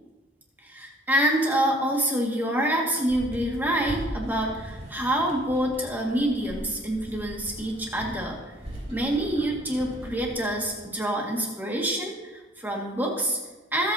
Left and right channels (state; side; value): normal; both; correlation 0.56